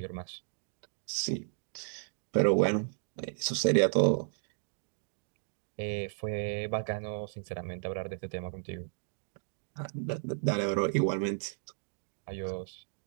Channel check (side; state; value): left; silent; digital silence